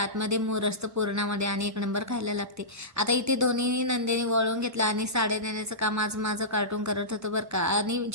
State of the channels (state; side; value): normal; both; correlation -0.18